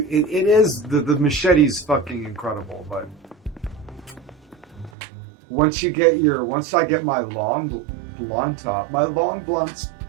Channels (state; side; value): drops out; left; at 4.9 s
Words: is the machete's fucking incredible, but once I get my long blunt up, my long blades